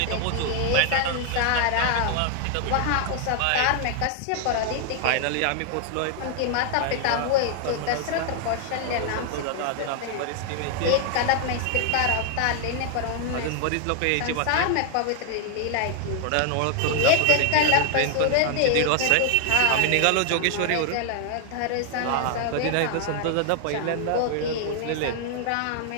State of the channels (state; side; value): different; both; correlation 0.00